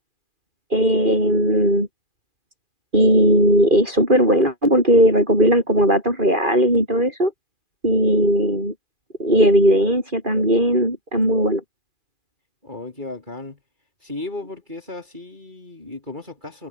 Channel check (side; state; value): left; late; 2.4 ms